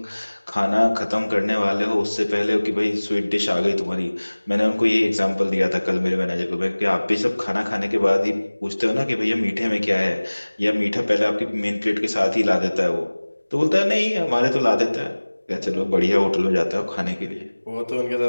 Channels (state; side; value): inverted; both; correlation -1.00